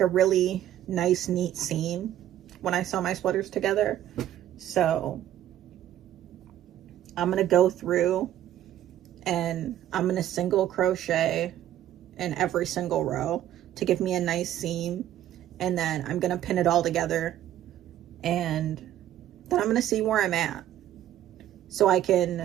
a really nice, neat seam when I sew my sweaters together. So I'm gonna go through and I'm gonna single crochet in every single row to give me a nice seam, and then I'm gonna pin it all together, and then I'm gonna see where I'm at, so I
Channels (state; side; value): quieter; left; 12.1 dB